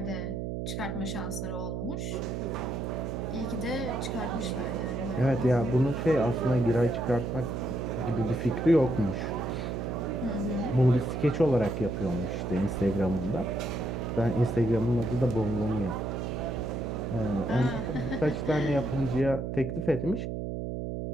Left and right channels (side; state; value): right; noise; hum, 3 dB below the sound